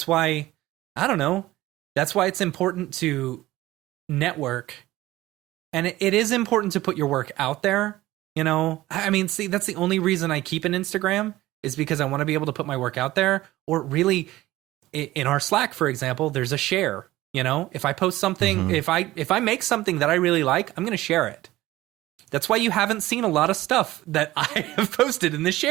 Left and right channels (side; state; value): left; quieter; 16.8 dB